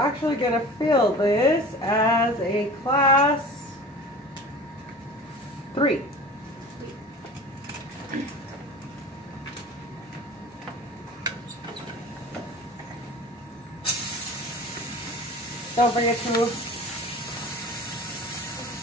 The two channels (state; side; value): normal; both; correlation 0.39